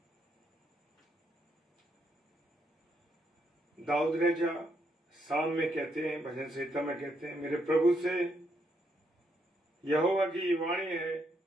दाऊद राजा साम में कहते हैं, भजन संहिता में कहते हैं, मेरे प्रभु से यहोवा की ये वाणी है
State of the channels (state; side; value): normal; both; correlation 0.77